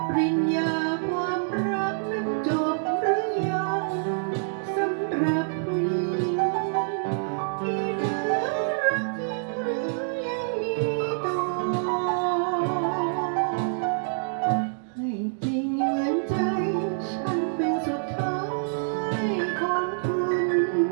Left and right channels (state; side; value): silent; left; digital silence